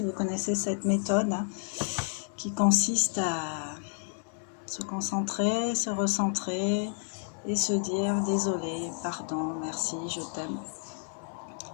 vous connaissez cette méthode hein, qui consiste à se concentrer, se recentrer et se dire désolé, pardon, merci, je t'aime.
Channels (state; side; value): silent; right; 57 dB below the other